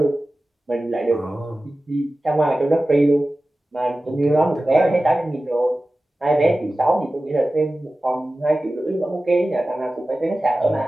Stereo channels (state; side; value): normal; both; correlation 0.96